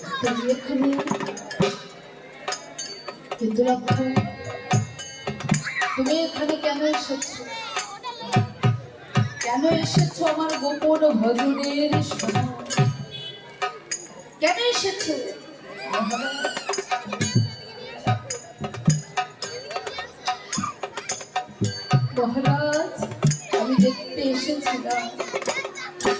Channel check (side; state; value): both; identical; correlation 1.00